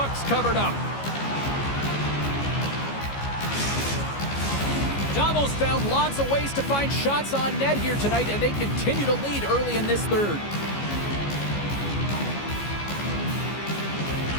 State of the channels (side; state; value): right; late; 14 ms